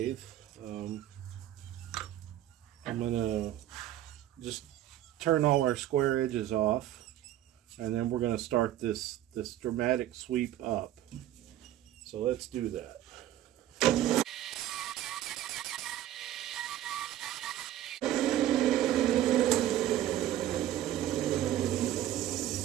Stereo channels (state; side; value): quieter; left; 12.7 dB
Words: I'm gonna just turn all our square edges off, and then we're gonna start this dramatic sweep up. So let's do that.